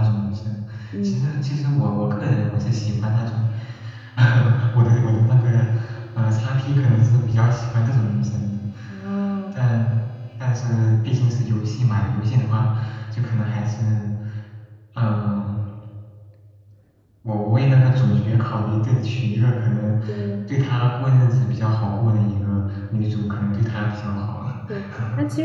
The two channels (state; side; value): identical; both; correlation 1.00